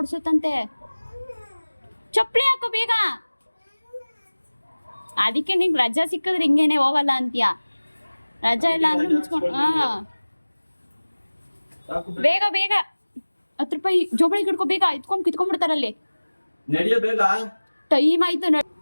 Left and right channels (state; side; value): inverted; both; correlation -1.00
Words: ಚಪ್ಪಲಿ ಹಾಕೋ ಬೇಗ. ಅದಕ್ಕೆ ನಿಂಗೆ ರಜಾ ಸಿಕ್ಕಿದ್ರೆ ಹಿಂಗೇನೆ ಹೋಗಲ್ಲ ಅಂತೀಯ. ರಜಾ ಇಲ್ಲ ಅಂದ್ರೆ ಮುಚ್ಕೊಂಡು ಬೇಗ ಬೇಗ 10 ರೂಪಾಯಿ ಜೋಬಳಿಗೆ ಹಿಡ್ಕೊ ಬೇಗ. ಎತ್ಕೊಂಡು ಕಿತ್ಕೊಂಡ್ಬಿಡ್ತಾರಲ್ಲಿ. ನಡಿಯೋ ಬೇಗ. ಟೈಮ್ ಆಯ್ತು.